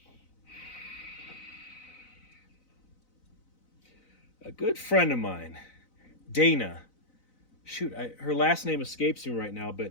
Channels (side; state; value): right; late; 4.0 ms